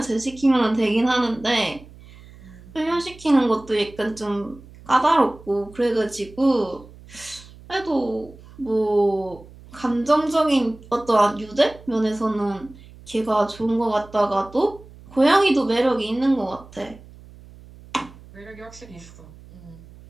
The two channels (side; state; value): right; noise; hum, 21 dB below the sound